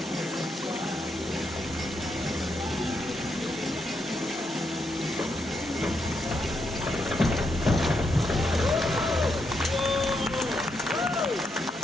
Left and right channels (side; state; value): both; normal; correlation 0.80